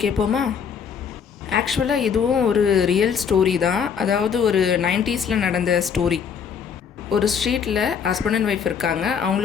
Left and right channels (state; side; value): quieter; right; 7.0 dB